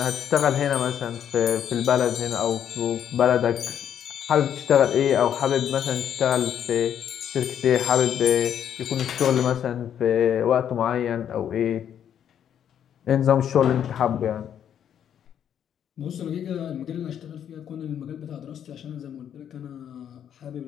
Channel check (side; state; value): right; quieter; 9.3 dB